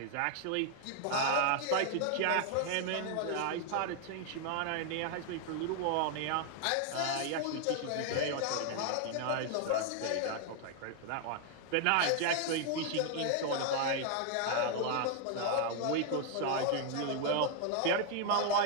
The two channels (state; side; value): different; both; correlation 0.00